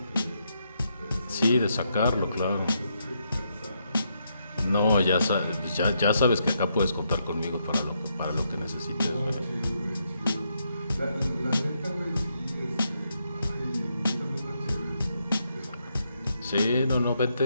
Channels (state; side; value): inverted; both; correlation -0.79